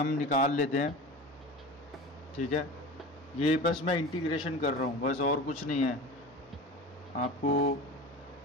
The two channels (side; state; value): both; normal; correlation 0.33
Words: निकाल लेते हैं, ठीक है। ये बस मैं इंटीग्रेशन कर रहा हूँ, बस और कुछ नहीं है, आपको